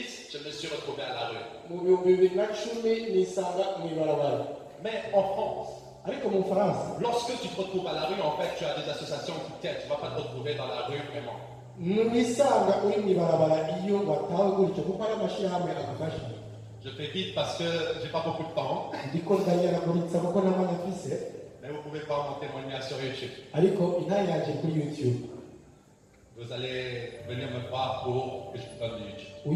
je me suis retrouvé à la rue. Mais en France, lorsque tu te retrouves à la rue, en fait, tu as des associations qui t'aident. Tu ne vas pas te retrouver dans la rue vraiment. Je fais vite parce que j'ai pas beaucoup de temps. Mais vous pouvez voir mon témoignage sur YouTube. Vous allez venir me voir pour que je vous donne YouTube.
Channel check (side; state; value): both; identical; correlation 1.00